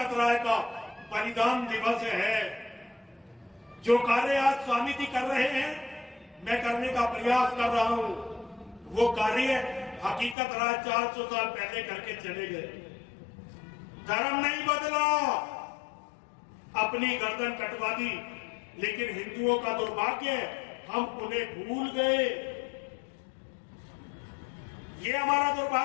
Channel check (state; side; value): drops out; right; at 10.4 s